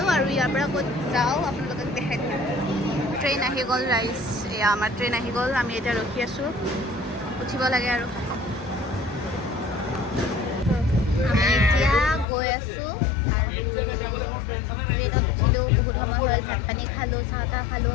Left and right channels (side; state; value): right; drops out; at 12.2 s